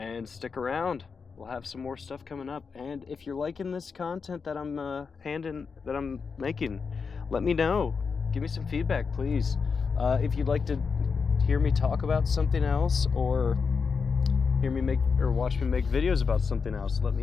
stick around. We'll have some more stuff coming up. And if you're liking this content that I'm making, let me know. Give me some feedback, please. If you'd like to hear me talk about something else, or hear me watch me make videos about something else, let me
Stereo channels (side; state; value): right; quieter; 5.4 dB